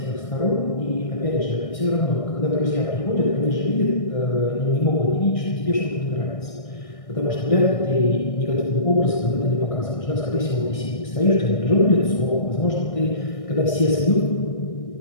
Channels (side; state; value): right; late; 1.6 ms